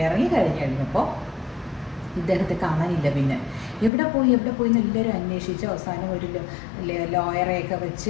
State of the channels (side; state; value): right; drops out; at 3.9 s